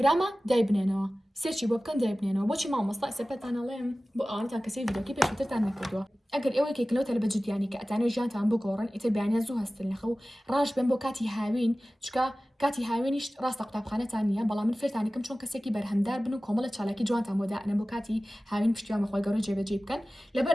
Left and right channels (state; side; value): normal; both; correlation 0.97